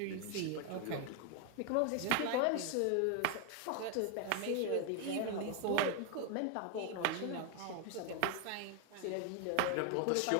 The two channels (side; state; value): both; different; correlation 0.01